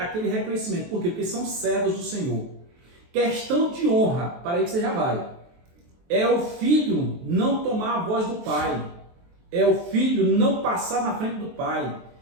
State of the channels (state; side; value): late; left; 23 ms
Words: reconhecimento. Por quê? Porque são servos do Senhor. Questão de honra, para aí que você já vai. É o filho não tomar a voz do pai. É o filho não passar na frente do pai.